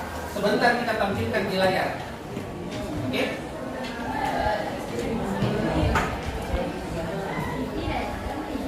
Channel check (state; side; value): identical; both; correlation 1.00